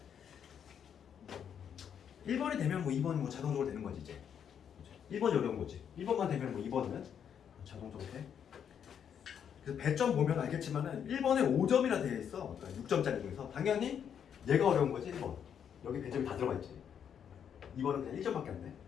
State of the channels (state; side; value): quieter; right; 8.3 dB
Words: 1번이 되면 뭐 2번이 뭐 자동적으로 되는 거지 이제 1번이 어려운 거지 1번만 되면 뭐 2번은 자동적으로 돼. 그래서 배점 보면 알겠지만은 1번에 5점이나 되어 있어. 그러니까 6점짜리 중에서 당연히 얘가 어려운 거지 1번 여기 배점이 다 들어가 있지. 2번은 그냥 1점밖에 안 돼.